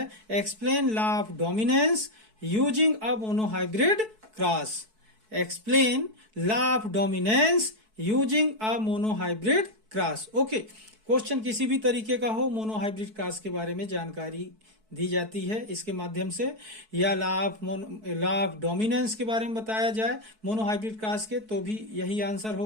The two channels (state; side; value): late; left; 4.6 ms